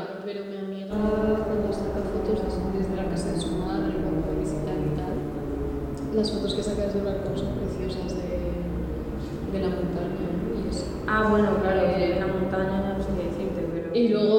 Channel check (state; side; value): identical; both; correlation 1.00